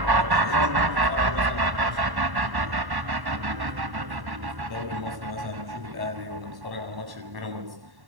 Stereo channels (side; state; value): left; late; 1.1 ms